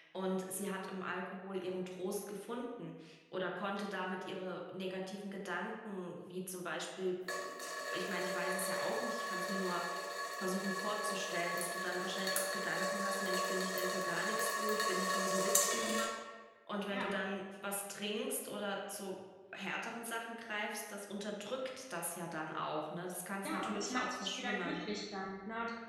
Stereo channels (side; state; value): both; identical; correlation 1.00